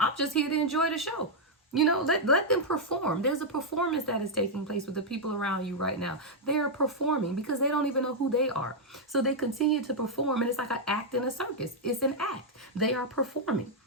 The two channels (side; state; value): both; normal; correlation -0.03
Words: just here to enjoy the show. You know, let them perform. There's a performance that is taking place with the people around you right now. They are performing because they don't even know who they are. So they continue to perform, and it's like an act in a circus. It's an act. They are performing.